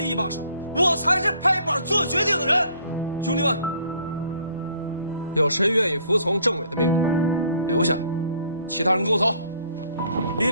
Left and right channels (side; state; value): both; inverted; correlation -0.60